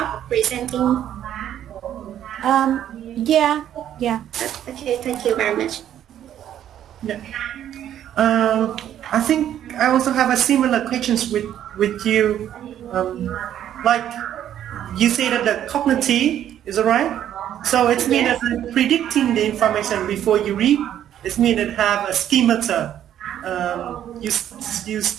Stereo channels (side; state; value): left; quieter; 10.8 dB